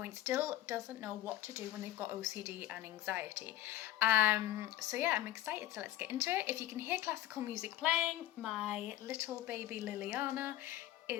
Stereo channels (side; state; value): right; quieter; 14.0 dB